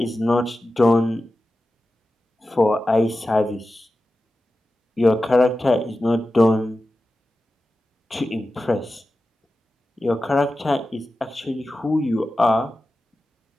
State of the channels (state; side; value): normal; both; correlation 0.94